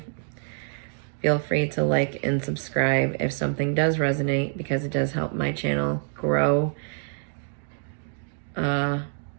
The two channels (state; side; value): silent; left; digital silence